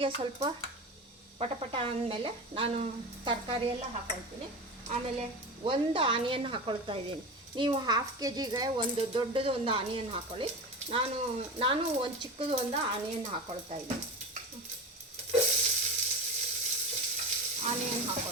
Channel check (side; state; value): both; normal; correlation 0.27